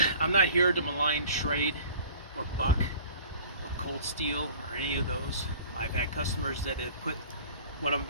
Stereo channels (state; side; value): inverted; both; correlation -0.46